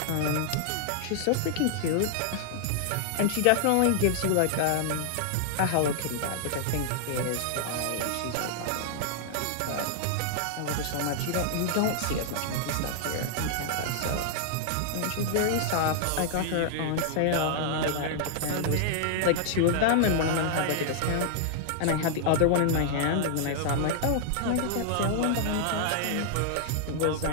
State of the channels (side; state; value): both; different; correlation -0.01